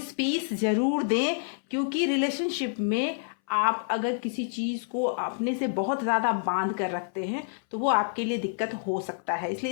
स्पेस जरूर दें, क्योंकि रिलेशनशिप में आप अगर किसी चीज को अपने से बहुत ज्यादा बांध कर रखते हैं तो वो आपके लिए दिक्कत हो सकता है।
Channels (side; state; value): right; silent; 59 dB below the other